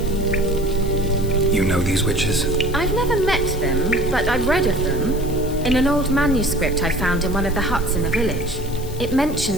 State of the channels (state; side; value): noise; left; hiss, 17 dB below the sound